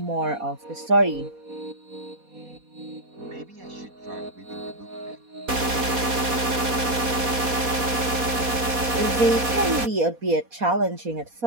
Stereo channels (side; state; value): left; late; 4.2 ms